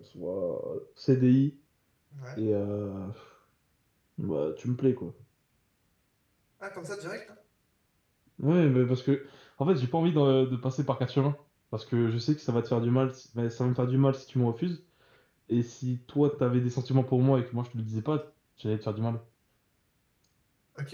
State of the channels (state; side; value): identical; both; correlation 1.00